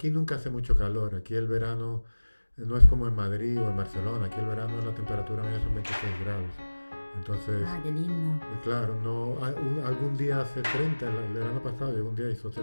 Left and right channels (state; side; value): inverted; both; correlation -1.00